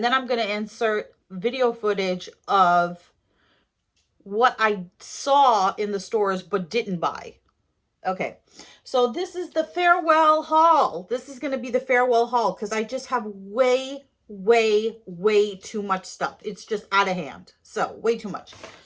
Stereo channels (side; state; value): both; identical; correlation 1.00